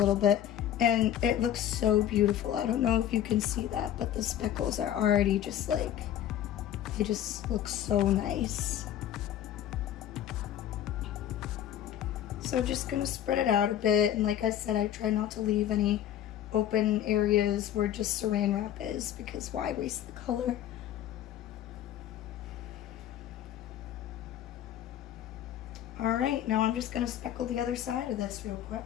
bit, and it looks so beautiful. I don't know if you can see that, but the speckles are already just like, they just look so nice. So just gonna spread it out a bit, and like I said, I try not to leave any open areas where just saran wrap is, because why waste the color? All right, now I'm just gonna speckle the other side of this real quick.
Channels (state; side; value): quieter; right; 11.1 dB